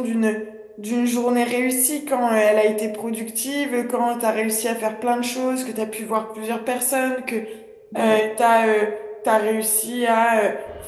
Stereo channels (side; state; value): both; identical; correlation 1.00